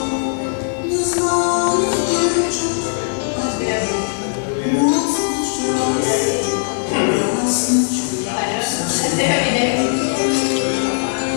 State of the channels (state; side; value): silent; right; digital silence